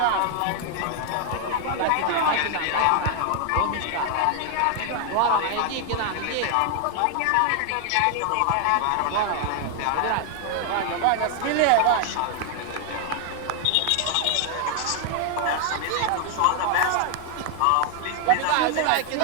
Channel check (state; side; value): different; both; correlation 0.00